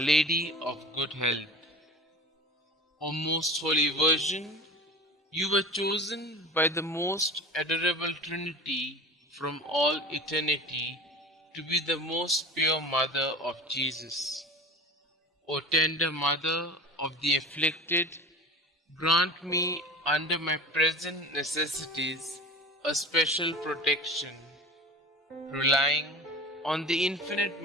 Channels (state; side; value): normal; both; correlation 0.35